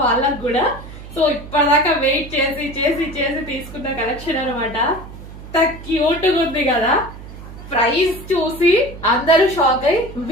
వాళ్ళకు కూడా. సో ఇప్పటిదాకా వెయిట్ చేసి చేసి చేసి తీసుకున్న కలెక్షన్ అనమాట. క్యూట్ గా ఉంది కదా. ప్రైస్ చూసి అందరూ షాక్ అయ్యి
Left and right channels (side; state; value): right; noise; hum, 14 dB below the sound